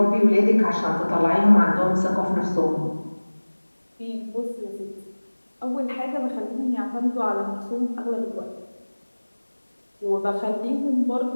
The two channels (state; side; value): inverted; both; correlation -1.00